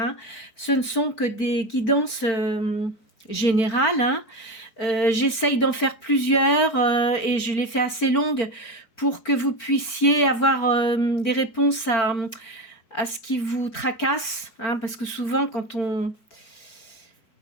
ce ne sont que des guidances générales. Hein. J'essaye d'en faire plusieurs et je les fais assez longues pour que vous puissiez avoir des réponses à ce qui vous tracasse. Hein, parce que souvent, quand on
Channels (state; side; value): late; right; 4.4 ms